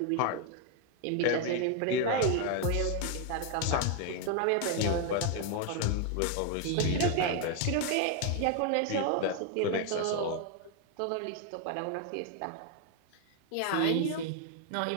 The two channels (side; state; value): both; different; correlation 0.01